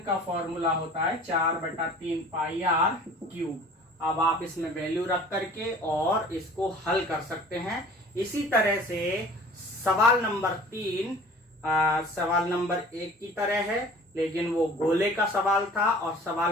फॉर्मूला होता है 4/3 पाई आर क्यूब। अब आप इसमें वैल्यू रख करके और इसको हल कर सकते हैं। इसी तरह से सवाल नंबर 3 सवाल नंबर 1 की तरह है, लेकिन वो गोले का सवाल था, और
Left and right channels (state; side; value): normal; both; correlation 0.47